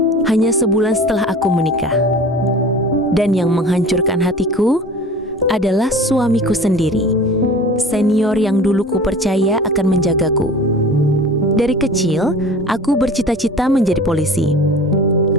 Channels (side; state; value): both; normal; correlation 0.40